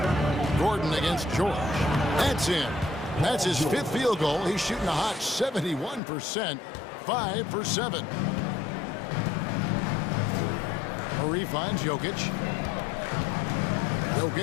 Gordon against George. That's in. That's his fifth field goal. He's shooting a hot 71%. 5 for 7. Murray finds Jokic.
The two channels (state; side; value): drops out; right; at 6.0 s